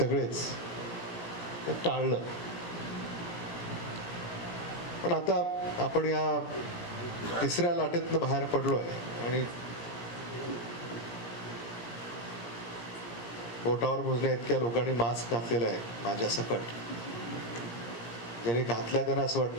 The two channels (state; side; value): late; right; 17 ms